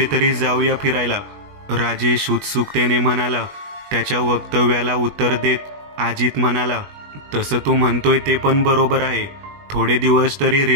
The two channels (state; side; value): late; left; 20 ms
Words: जाऊया फिरायला, राजेश उत्सुकतेने म्हणाला. त्याच्या वक्तव्याला उत्तर देत अजित म्हणाला, तसं तू म्हणतोय ते पण बरोबर आहे. थोडे दिवस तरी